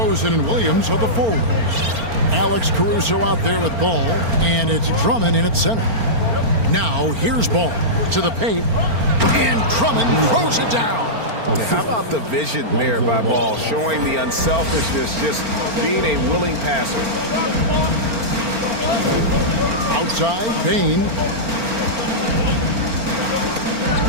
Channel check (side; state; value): left; late; 4.4 ms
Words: and Williams are the forwards. Alex Caruso out there with ball, and it's Drummond in at center. Now here's ball to the paint, and Drummond throws it down. How about the vision there by Ball, showing the unselfishness, just being a willing passer. Outside, Bain.